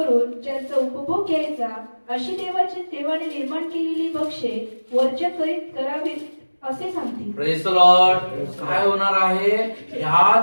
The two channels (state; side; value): inverted; both; correlation -1.00